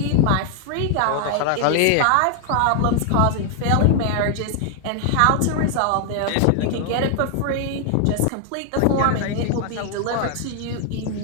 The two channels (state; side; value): different; both; correlation 0.00